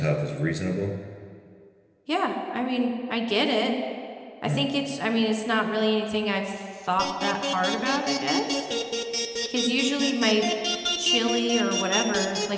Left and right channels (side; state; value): both; identical; correlation 1.00